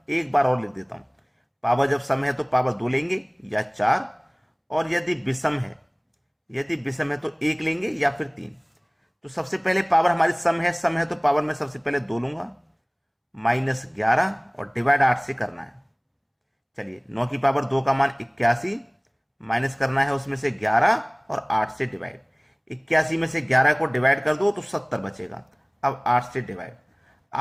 एक बार और लिख देता हूं। पावर जब सम है तो पावर 2 लेंगे या 4, और यदि विषम है तो 1 लेंगे या फिर 3। तो सबसे पहले पावर हमारी सम है तो पावर में सबसे पहले 2 लूंगा, माइनस 11 और डिवाइड 8 से करना है। चलिए, 9 की पावर 2 का मान 81, माइनस करना है उसमें से 11 और 8 से डिवाइड। 81 में से 11 को डिवाइड कर दो तो 70 बचेगा। अब 8 से डिवाइड,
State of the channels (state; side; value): identical; both; correlation 1.00